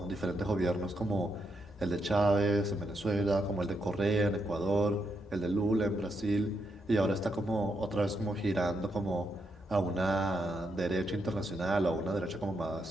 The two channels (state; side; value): normal; both; correlation 0.80